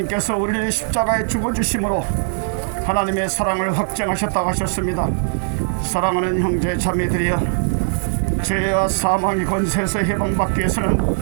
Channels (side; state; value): left; silent; 66 dB below the other